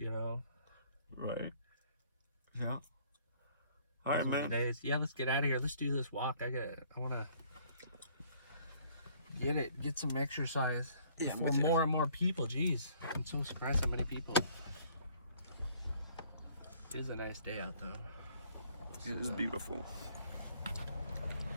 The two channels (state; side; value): inverted; both; correlation -0.60